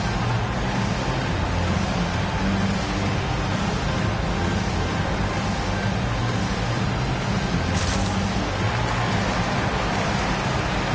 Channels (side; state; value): both; identical; correlation 1.00